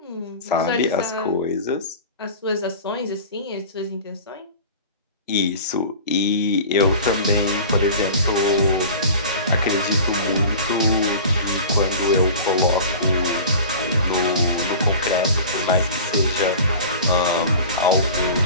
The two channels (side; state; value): both; inverted; correlation -0.38